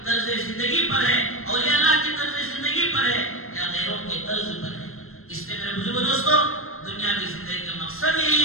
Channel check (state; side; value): late; right; 0.62 ms